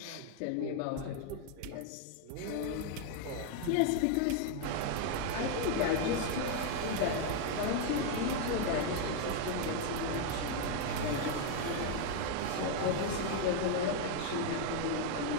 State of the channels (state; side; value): different; both; correlation 0.01